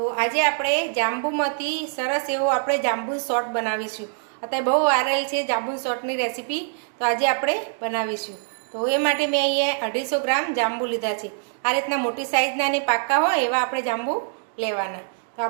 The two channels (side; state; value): left; silent; digital silence